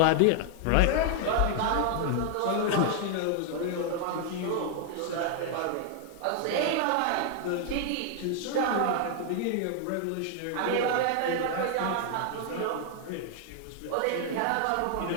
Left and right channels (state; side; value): different; both; correlation 0.00